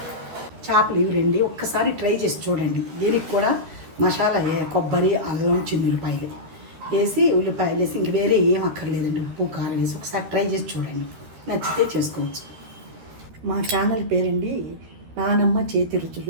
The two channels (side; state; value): left; late; 13 ms